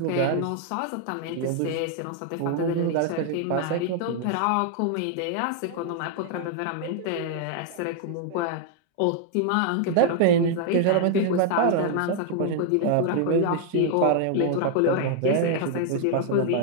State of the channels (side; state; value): both; different; correlation 0.00